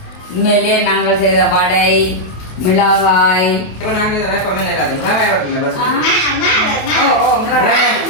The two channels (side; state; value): right; late; 28 ms